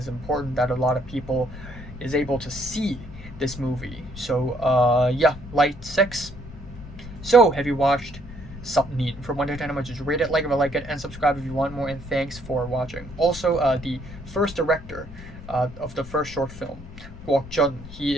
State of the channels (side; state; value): left; noise; rumble, 14 dB below the sound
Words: important that a lot of people is able to see this movie. So yeah, light 6. So have you watched Self-Immolator? From 1 to 10, how much is rate it, like if you like it, and subscribe if you want more, and thanks for watching. Also, the first director of the first short film, Guok Jun, he